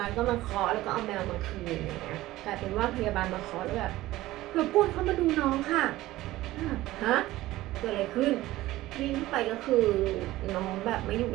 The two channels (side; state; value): left; quieter; 16.7 dB